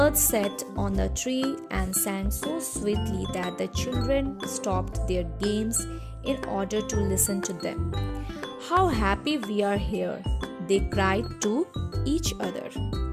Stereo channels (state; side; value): identical; both; correlation 1.00